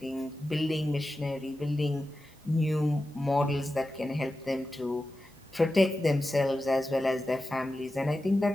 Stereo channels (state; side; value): normal; both; correlation 0.92